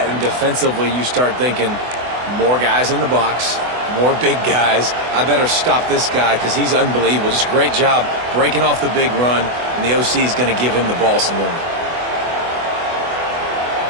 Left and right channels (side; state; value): left; late; 24 ms